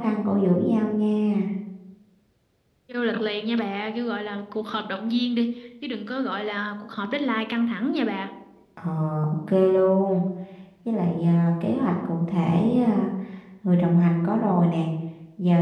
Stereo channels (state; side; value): identical; both; correlation 1.00